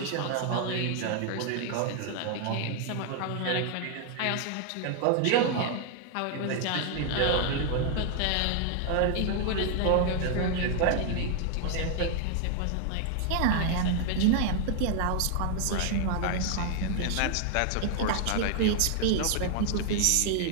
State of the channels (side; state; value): both; different; correlation 0.00